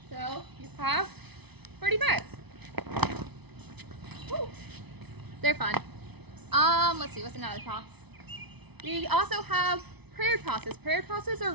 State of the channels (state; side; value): late; left; 0.99 ms